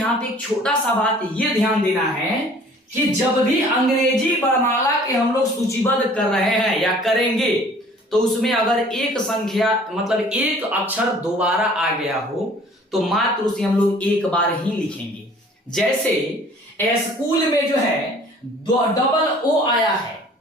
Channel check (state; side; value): normal; both; correlation 0.52